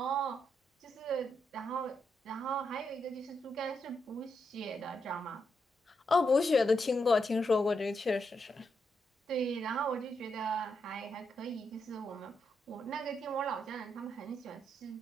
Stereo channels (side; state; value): both; normal; correlation 0.81